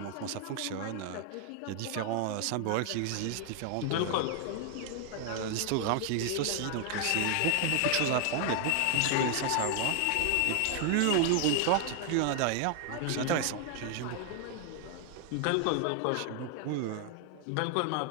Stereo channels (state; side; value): different; both; correlation 0.00